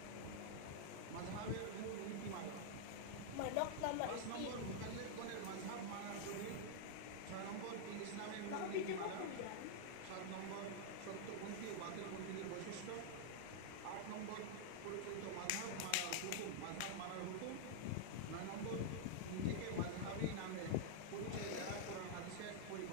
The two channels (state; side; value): different; both; correlation -0.01